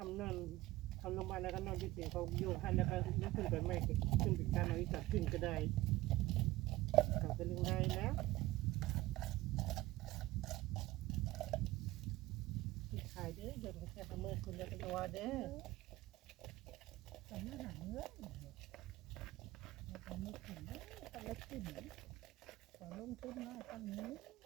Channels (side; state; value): left; quieter; 17.7 dB